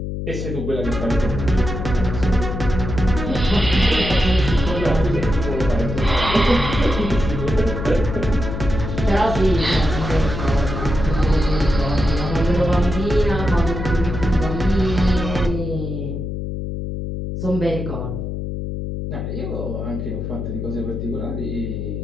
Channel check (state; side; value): noise; left; hum, 5 dB below the sound